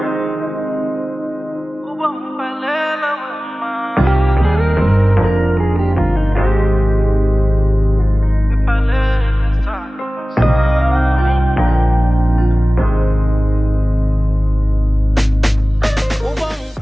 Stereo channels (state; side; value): normal; both; correlation 0.97